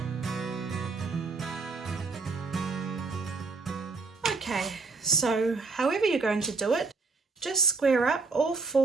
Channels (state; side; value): quieter; left; 4.2 dB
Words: Okay, so however you're going to do it, just square up all